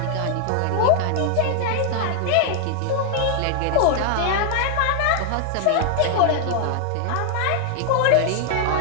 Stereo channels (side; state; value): both; different; correlation 0.00